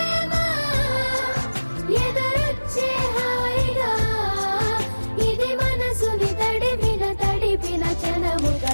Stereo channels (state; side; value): inverted; both; correlation -1.00